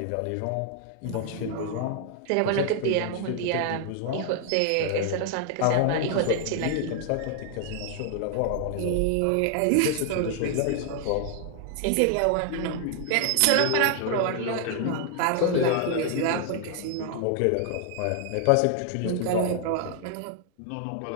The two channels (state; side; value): different; both; correlation 0.00